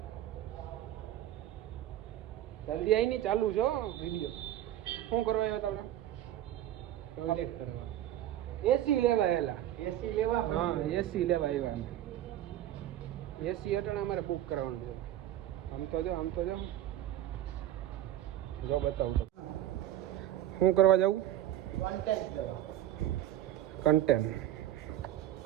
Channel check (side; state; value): left; quieter; 12.7 dB